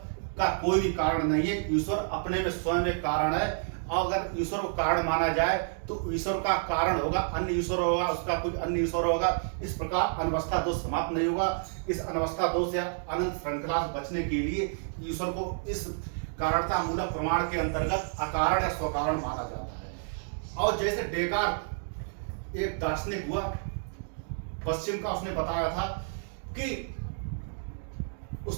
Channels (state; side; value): silent; left; digital silence